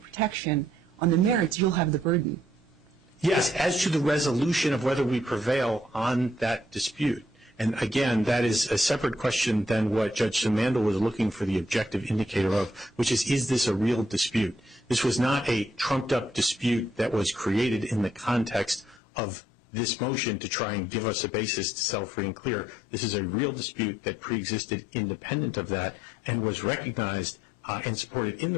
protection, on the merits, you'll have the burden. Yes, as to the resolution of whether we prevail on that dispute. And again, that is a separate question than what Judge Simandl was looking for the objective indicator of, which is this a real dispute? This was not a trumped-up dispute that was created in the context of this motion to try and give us a basis to sell free and clear. This is a real dispute that preexisted independent of that and was recognized and supported in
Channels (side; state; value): right; drops out; at 19.0 s